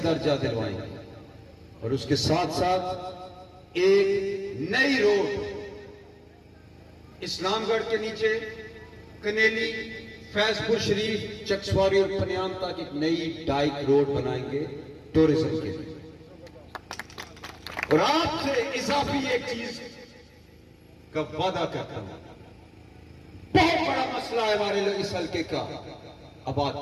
درجہ دلوائیں گے. اور اس کے ساتھ ساتھ ایک نئی روڈ اسلام گڑھ کے نیچے کنیلی, فیض پور شریف, چکسواری اور پنیام تک ایک نئی ڈائک روڈ بنائیں گے ٹورزم کے لیے. اور آپ سے اضافی ایک چیز کا وعدہ کرتا ہوں, بہت بڑا مسئلہ ہے ہمارے لوگ اس حلقے کا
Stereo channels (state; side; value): identical; both; correlation 1.00